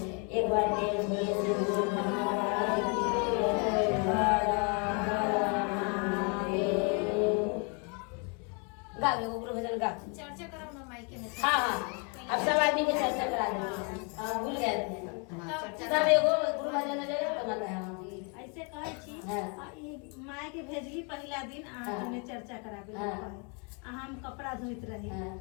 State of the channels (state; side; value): quieter; right; 35.8 dB